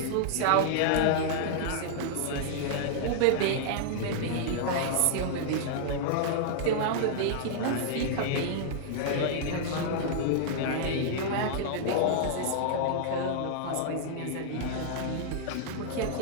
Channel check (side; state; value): both; different; correlation -0.01